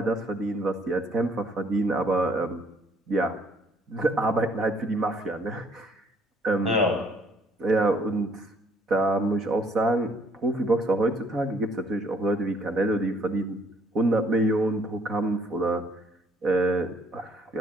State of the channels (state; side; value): normal; both; correlation 0.63